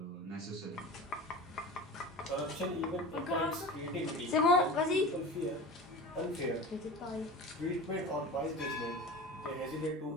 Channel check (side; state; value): both; normal; correlation 0.33